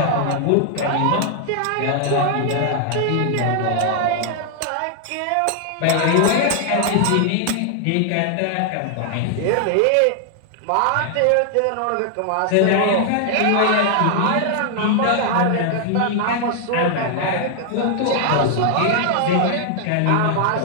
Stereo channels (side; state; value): both; different; correlation 0.00